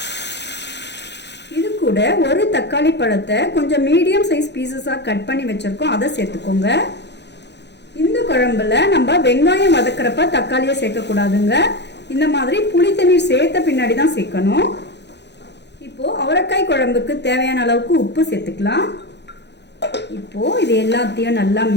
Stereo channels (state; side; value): late; right; 0.50 ms